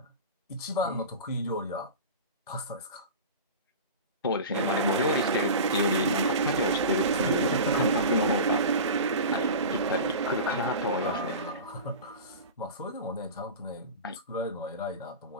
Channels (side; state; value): both; inverted; correlation -0.31